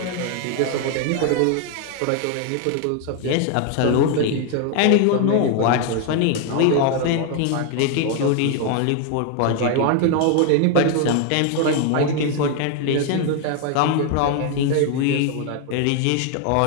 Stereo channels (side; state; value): both; different; correlation 0.01